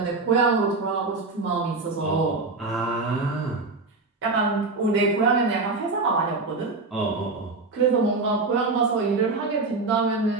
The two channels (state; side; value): quieter; left; 3.7 dB